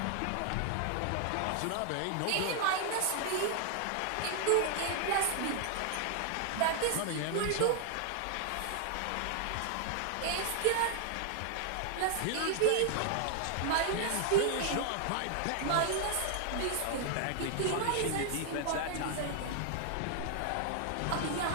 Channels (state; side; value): different; both; correlation 0.00